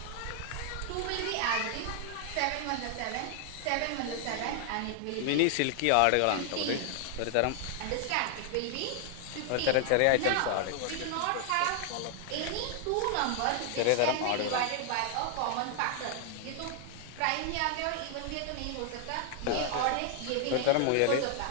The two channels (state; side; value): different; both; correlation 0.00